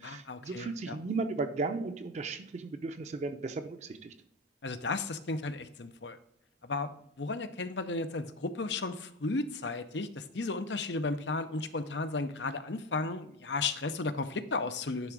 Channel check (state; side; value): normal; both; correlation 0.24